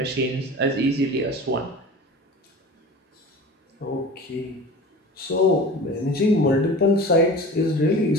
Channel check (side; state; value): both; normal; correlation 0.37